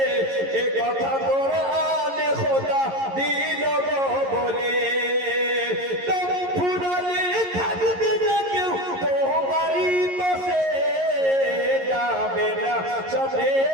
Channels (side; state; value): left; late; 11 ms